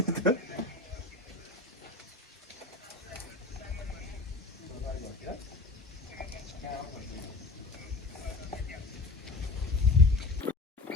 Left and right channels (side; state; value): right; quieter; 3.4 dB